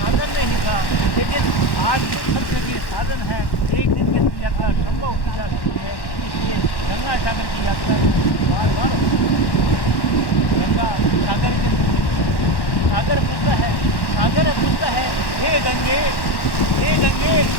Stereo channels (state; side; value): late; right; 1.1 ms